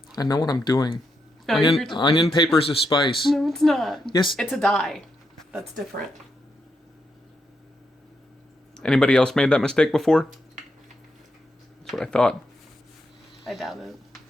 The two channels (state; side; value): normal; both; correlation 0.82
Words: I know what I'm doing. No, Onion paper's a spice. No, it's not. Yes. It's a dye. That's different. Anybody else made that mistake before? That's what I thought. I doubt it.